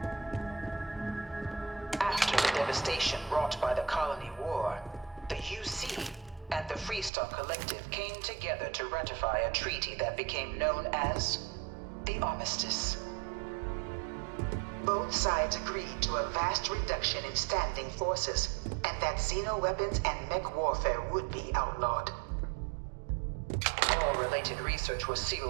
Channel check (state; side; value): drops out; left; at 7.1 s